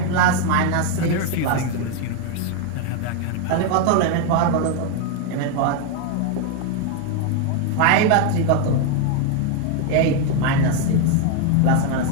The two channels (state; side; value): different; both; correlation 0.01